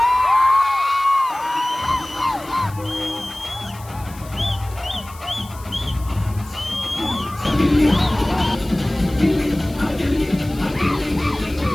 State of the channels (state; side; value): noise; left; hiss, 20 dB below the sound